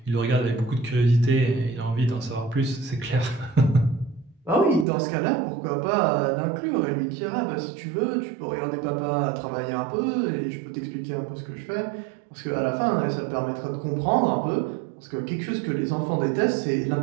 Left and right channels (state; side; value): drops out; left; at 4.9 s